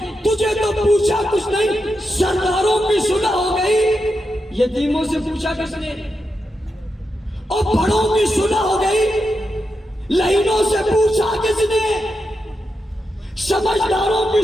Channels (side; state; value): both; normal; correlation 0.87